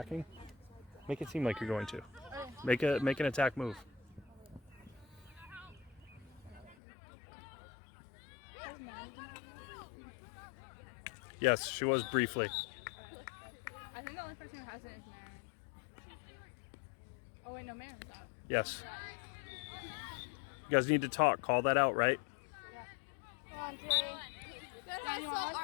make it seem like you're going to. Make an attack move. Yes, she was briefly. I think the only person who hasn't is Marin. Oh wait, no, Marin's out. Yes. You guys need to talk. Call that out, right? All right.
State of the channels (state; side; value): drops out; right; at 6.8 s